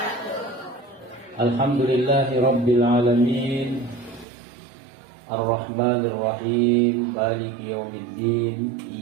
Alhamdulillahi rabbil alamin. Ar-Rahmanir-Rahim. Maliki yaumiddin.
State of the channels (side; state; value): left; drops out; at 4.2 s